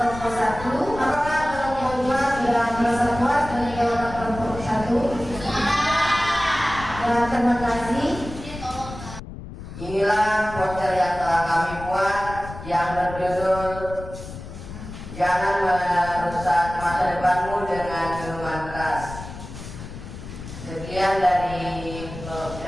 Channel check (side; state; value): left; noise; rumble, 12 dB below the sound